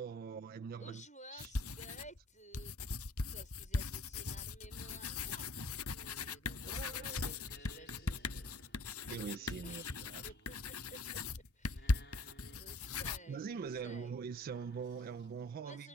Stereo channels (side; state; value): both; normal; correlation 0.55